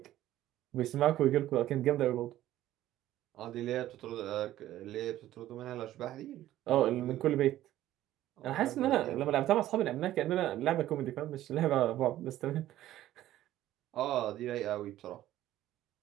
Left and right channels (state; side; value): quieter; left; 13.8 dB